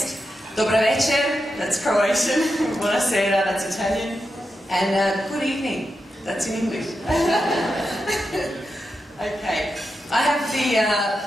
Dobar večer, that's Croatian. Buonasera, that's Italian. And good evening, that's in English. Okay, I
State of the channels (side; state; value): both; normal; correlation 0.88